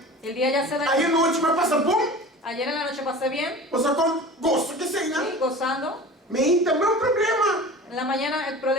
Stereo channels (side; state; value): both; normal; correlation 0.38